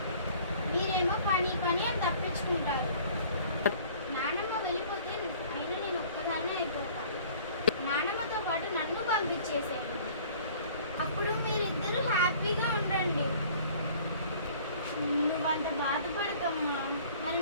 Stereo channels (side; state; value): both; inverted; correlation -0.52